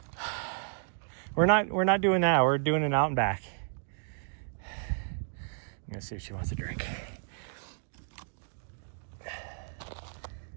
We're not doing that. We're doing an out and back. I'm gonna see if she wants a drink.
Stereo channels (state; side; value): silent; left; digital silence